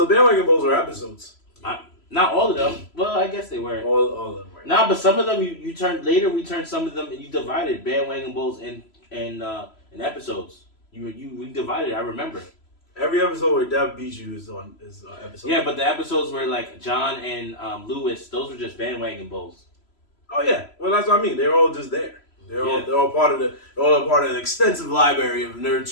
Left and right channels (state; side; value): late; right; 3.0 ms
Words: bandwagon bowls were episodes. Not all of them. Well, I guess they were. All of them were. Nah, but some of them you turned later. We turned some of them and you divided bandwagon bowls and episodes. We divided. I remember. Every episode where Dev beat you is episode. Yeah, but the episodes were like John and Lewis. Those were just bandwagon bowls. Oh yeah. Well, that's what I mean. They're all just there. They're all part of an extensive library of nerd